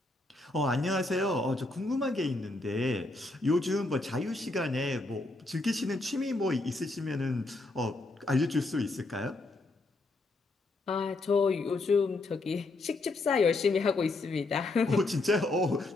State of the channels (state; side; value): quieter; right; 3.0 dB